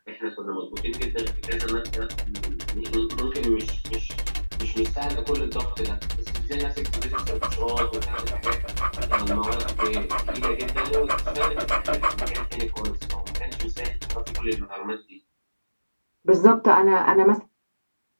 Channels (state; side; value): inverted; both; correlation -1.00